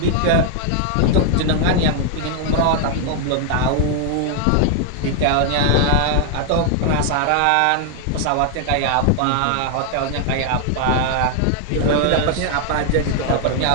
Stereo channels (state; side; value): different; both; correlation 0.00